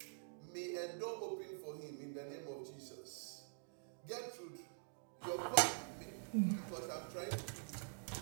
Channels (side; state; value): left; silent; digital silence